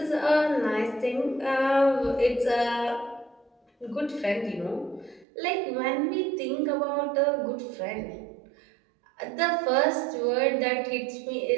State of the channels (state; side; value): drops out; left; at 5.2 s